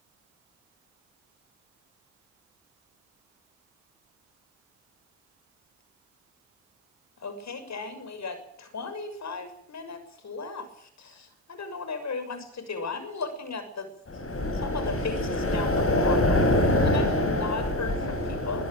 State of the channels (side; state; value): both; normal; correlation 0.15